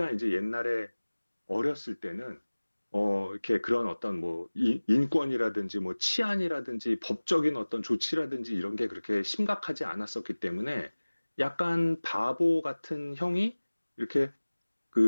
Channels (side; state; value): both; inverted; correlation -1.00